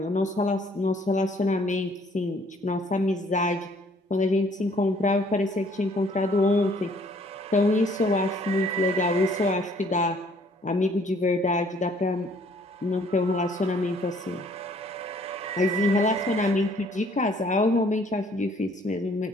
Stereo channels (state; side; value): normal; both; correlation 0.60